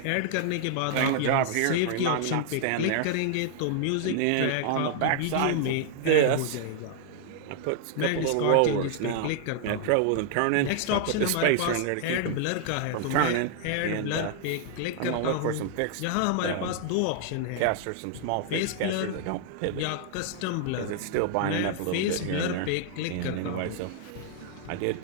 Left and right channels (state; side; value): different; both; correlation 0.00